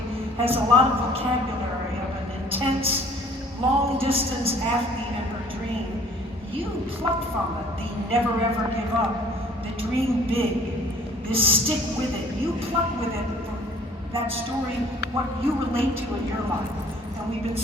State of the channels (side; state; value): both; normal; correlation 0.54